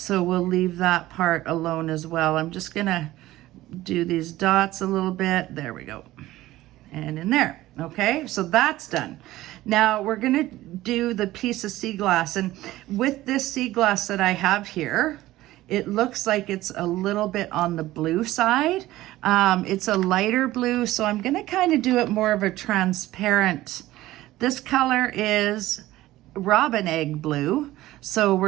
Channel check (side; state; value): left; quieter; 16.3 dB